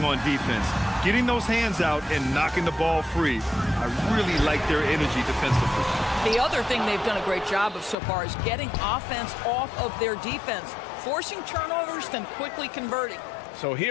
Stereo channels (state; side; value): drops out; right; at 8.0 s